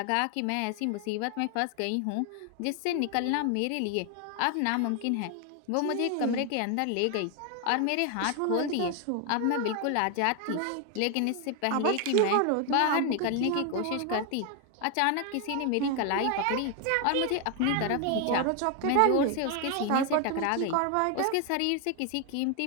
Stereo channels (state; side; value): different; both; correlation 0.01